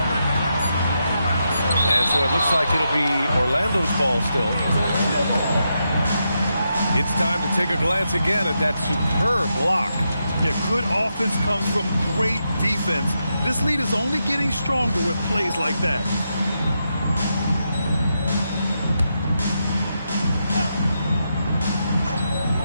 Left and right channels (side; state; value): both; inverted; correlation -0.84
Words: And so it looks like it'll be Orlando's ball still. It's time to take a glance again at that superb block. Yeah, good offense comes from great defense. This lead is only getting stronger with plays like that.